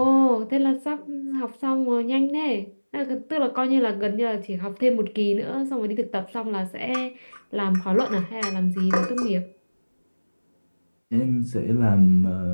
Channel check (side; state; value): both; inverted; correlation -1.00